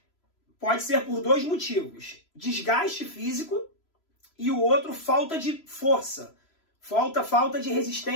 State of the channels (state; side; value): late; right; 3.0 ms